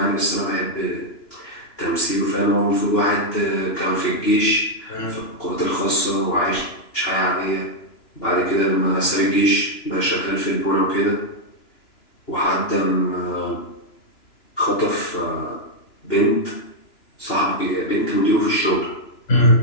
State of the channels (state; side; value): late; right; 2.9 ms